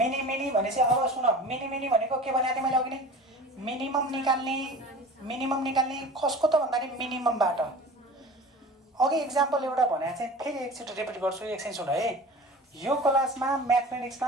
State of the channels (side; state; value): both; normal; correlation 0.38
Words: भनेपछि अब सुन मिनी भनेको के भनेको थिएँ मैले अघि नै मिनिमम निकाल्ने कसको त भन्दाखेरि मिनिममबाट अघि इक्जाम्पल एउटा भनेको चाहिँ फेरि एकचोटि रिपिट गर्छु एकछिन सुन है यो क्लासमा